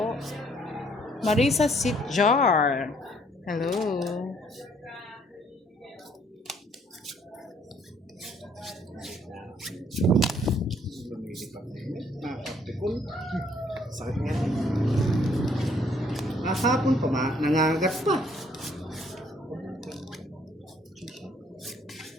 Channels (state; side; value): normal; both; correlation 0.64